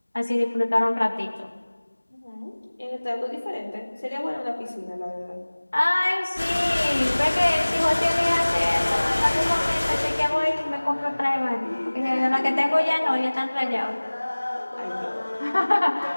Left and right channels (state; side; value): inverted; both; correlation -1.00